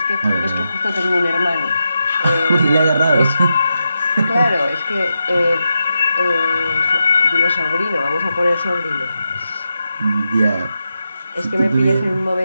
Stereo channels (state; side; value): inverted; both; correlation -0.88